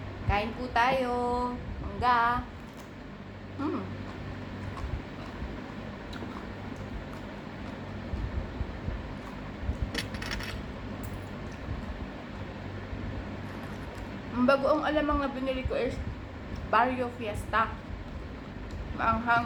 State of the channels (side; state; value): both; identical; correlation 1.00